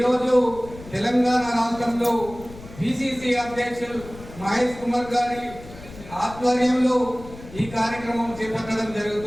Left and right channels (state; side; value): noise; left; rumble, 17 dB below the sound